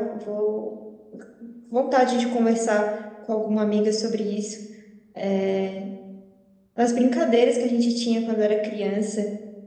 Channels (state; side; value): identical; both; correlation 1.00